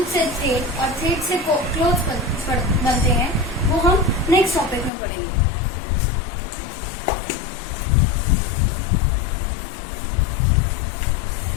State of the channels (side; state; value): right; drops out; at 4.9 s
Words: से थ्रेड और थ्रेड से क्लोथ बनते हैं वो हम नेक्स्ट टॉपिक में पढ़ेंगे।